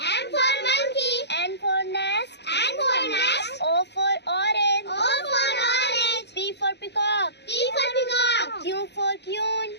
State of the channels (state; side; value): late; right; 0.50 ms